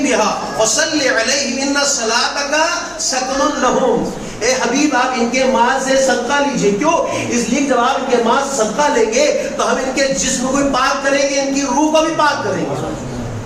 بہا وصلی علیہم ان صلاتک سکن لہم۔ اے حبیب آپ ان کے مال سے صدقہ لیجئے، کیوں؟ اس لیے جب آپ ان کے مال سے صدقہ لیں گے تو ہم ان کے جسم کو بھی پاک کریں گے، ان کی روح کو بھی پاک کریں گے۔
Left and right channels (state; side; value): noise; left; hum, 27 dB below the sound